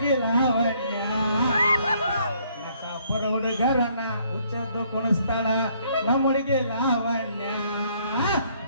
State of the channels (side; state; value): both; inverted; correlation -0.66